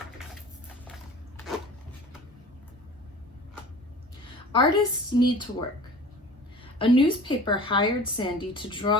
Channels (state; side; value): normal; both; correlation 0.41